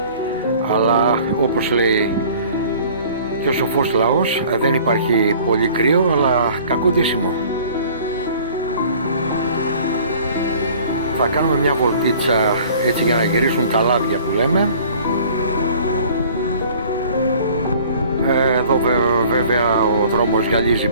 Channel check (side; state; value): both; inverted; correlation -0.50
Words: αλλά όπως λέει και ο σοφός λαός, δεν υπάρχει πολύ κρύο, αλλά κακό ντύσιμο. Θα κάνουμε μια βολτίτσα έτσι για να γυρίσουν τα λάδια που λέμε. Εδώ βέβαια ο δρόμος γυαλίζει